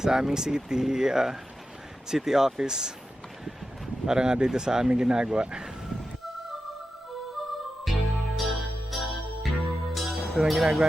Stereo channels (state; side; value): normal; both; correlation 0.90